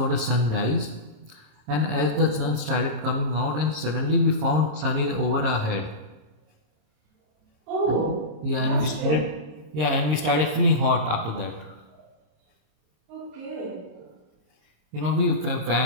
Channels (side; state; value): left; late; 26 ms